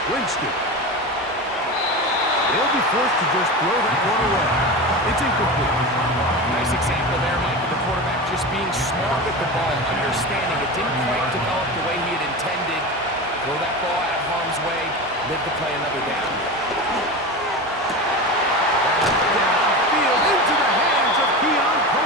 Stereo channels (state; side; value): normal; both; correlation 0.25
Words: Winston. They'll be forced to just throw that one away. It's incomplete. Nice example there, Mike, of the quarterback just being smart with the ball, understanding it didn't quite develop the way he had intended. Throw that ball out of harm's way, live to play another down. Downfield into the hands of Keon